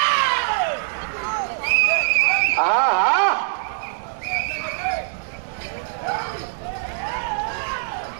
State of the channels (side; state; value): left; silent; digital silence